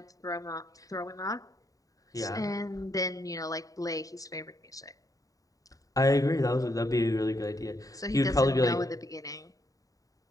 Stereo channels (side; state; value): right; late; 0.17 ms